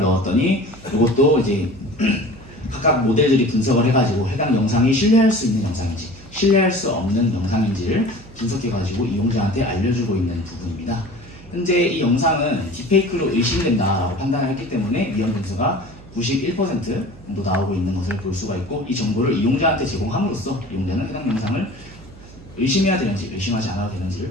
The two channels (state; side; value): noise; right; hum, 20 dB below the sound